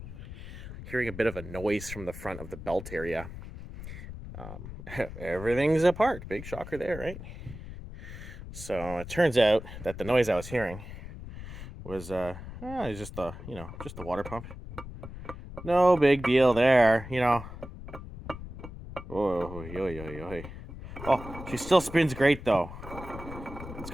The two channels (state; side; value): noise; left; rumble, 12 dB below the sound